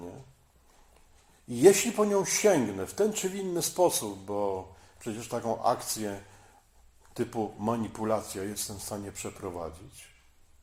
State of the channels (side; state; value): both; identical; correlation 1.00